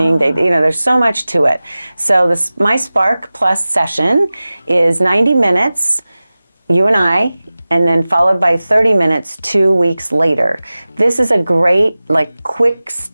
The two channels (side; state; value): both; inverted; correlation -0.97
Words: They, you know, there's so much to it. So my Spark Plus session is 90 minutes, you and I, and then followed by 30 minutes 2 weeks later. This is a great, like, quick